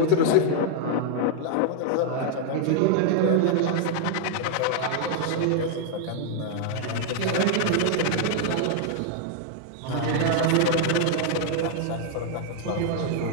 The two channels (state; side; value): different; both; correlation 0.00